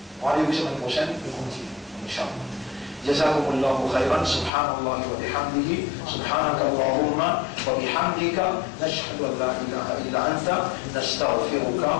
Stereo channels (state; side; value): drops out; right; at 4.5 s